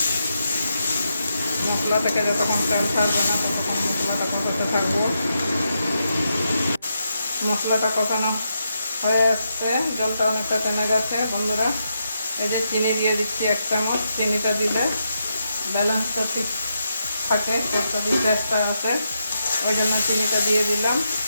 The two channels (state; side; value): inverted; both; correlation -0.83